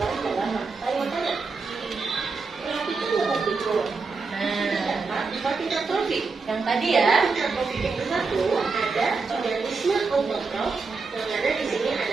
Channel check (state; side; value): quieter; left; 4.4 dB